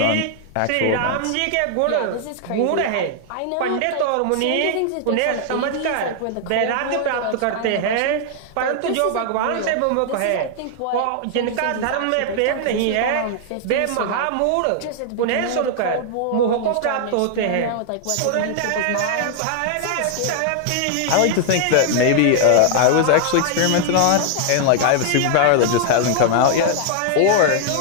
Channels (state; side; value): different; both; correlation 0.00